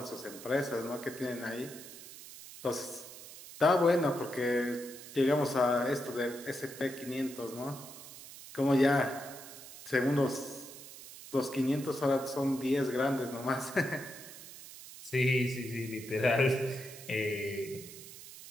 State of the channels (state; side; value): noise; right; hiss, 15 dB below the sound